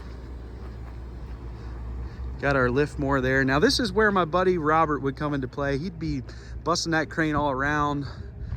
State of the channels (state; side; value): identical; both; correlation 1.00